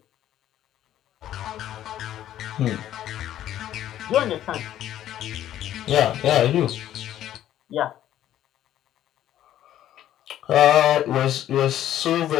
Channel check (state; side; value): quieter; right; 12.0 dB